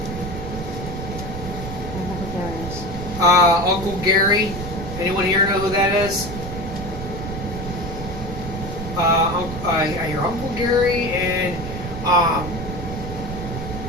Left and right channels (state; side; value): noise; right; rumble, 7 dB below the sound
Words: I don't know who Gary is. Uncle Gary. Anyone here know who that is? Your Uncle Gary and